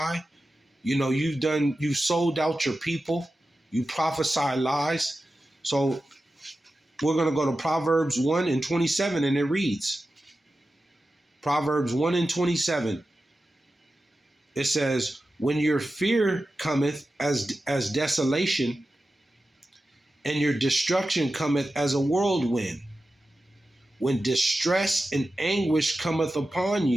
You've sold out your people. You prophesy lies. So we're going to go to Proverbs 1 and 27, and it reads, Proverbs 1 and 27. It says, when your fear cometh as desolation, and your destruction cometh as a whirlwind, when distress and anguish cometh upon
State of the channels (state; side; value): normal; both; correlation 0.93